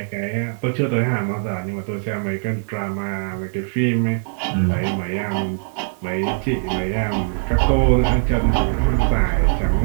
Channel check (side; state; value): left; silent; digital silence